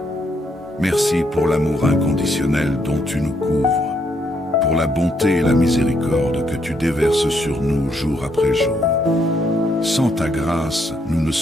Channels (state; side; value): normal; both; correlation 0.74